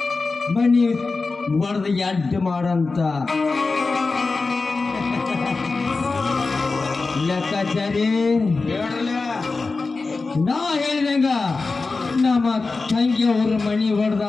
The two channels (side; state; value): right; quieter; 3.9 dB